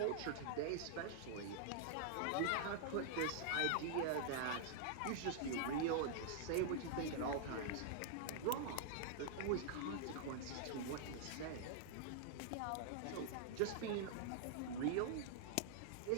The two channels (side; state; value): both; different; correlation -0.01